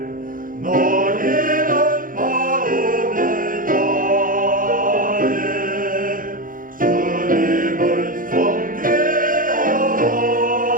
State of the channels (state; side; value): late; left; 0.40 ms